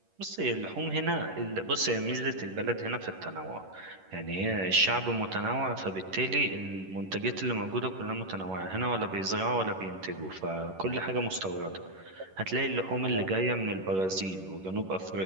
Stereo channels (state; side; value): late; left; 11 ms